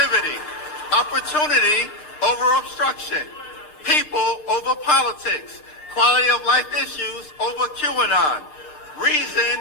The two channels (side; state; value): right; late; 6.6 ms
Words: opportunity over obstruction, people over politics, quality of life issues over QAnon, reason